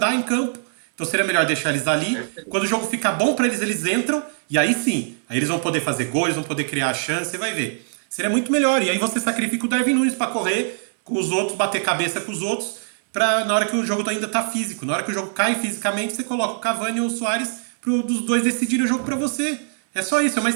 em campo. Então seria melhor deixar eles ali. Quando o jogo ficar bom para eles entram. E aí sim, aí eles vão poder fazer gols, vão poder criar chance, você vai ver. Seria muito melhor. E aí você sacrifica o Darwin Nunes para correr com os outros, bater cabeça com os outros, pra, na hora que o jogo ainda tá físico. Na hora que o jogo cai fisicamente, você coloca o Cavani ou o Suárez dos dois decidirem o jogo para você. É só isso, é uma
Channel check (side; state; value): left; silent; 64 dB below the other